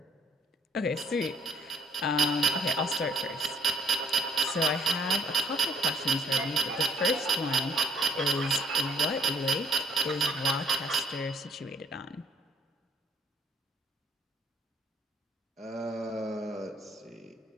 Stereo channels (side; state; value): both; normal; correlation 0.60